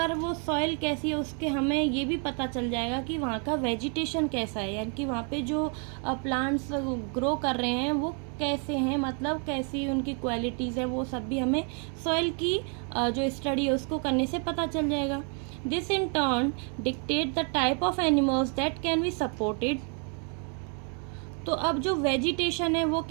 वो सॉइल कैसी है उसके हमें ये भी पता चल जाएगा कि वहाँ का वेजिटेशन कैसा है, यानी कि वहाँ पे जो प्लांट्स ग्रो कर रहे हैं वो कैसे हैं, मतलब कैसी उनकी क्वालिटीज़ है, वो सब भी हमें सॉइल की जो स्टडी है उसको करने से पता चल जाएगा। This in turn dictate the type of animals that can be supported. तो अब जो वेजिटेशन है वो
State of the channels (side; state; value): left; quieter; 39.4 dB